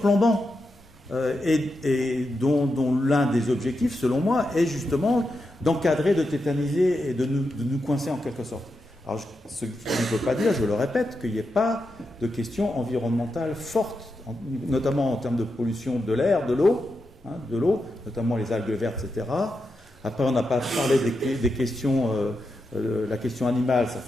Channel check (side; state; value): both; normal; correlation 0.87